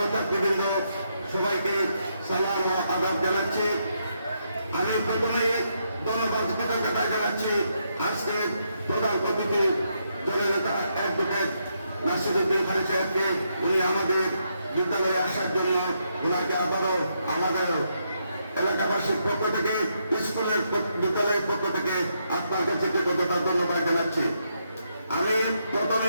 ছাত্রীবৃন্দ, সবাইকে সালাম ও আদাব জানাচ্ছি। আমি প্রথমে ধন্যবাদ কৃতজ্ঞতা জানাচ্ছি আজকে প্রধান অতিথি জননেতা অ্যাডভোকেট নাসিরউদ্দিন খান সাহেবকে, উনি আমাদের বিদ্যালয়ে আসার জন্য ওনাকে আবারও আমাদের এলাকাবাসীর পক্ষ থেকে স্কুলের বিদ্যালয়ের পক্ষ থেকে আপনার কাছে কৃতজ্ঞতা ধন্যবাদ জানাচ্ছি। আমি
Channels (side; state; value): both; inverted; correlation -0.79